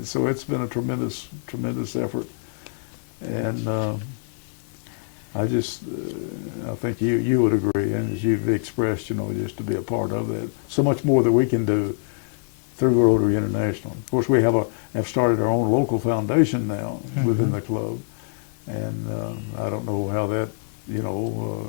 so it's been a tremendous effort, and I think you would agree, and as you've expressed, just to be a part of that. So much more that we can do through Rotary International. Of course, we have started our own local foundation now within the club, and I don't know how that,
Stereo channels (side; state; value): right; silent; digital silence